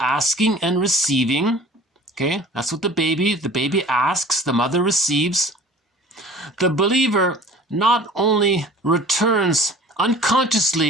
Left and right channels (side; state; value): both; normal; correlation 0.45